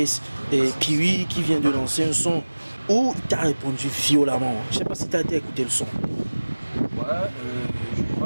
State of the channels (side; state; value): both; inverted; correlation -1.00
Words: Piwi, qui vient de lancer un son où il t'a répondu violemment. Je sais pas si t'as été écouter le son. Ouais, Je